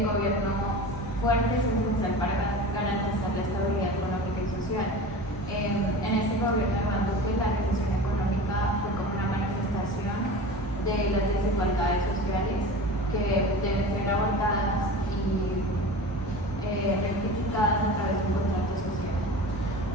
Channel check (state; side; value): normal; both; correlation 0.34